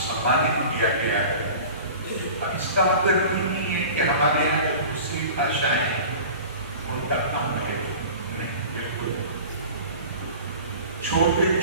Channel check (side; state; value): both; inverted; correlation -0.39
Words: किया गया है। इसका मतलब नहीं है कि हमारे यहाँ जो दूसरी भाषाएं हैं उनका कम है, बिल्कुल। छोटे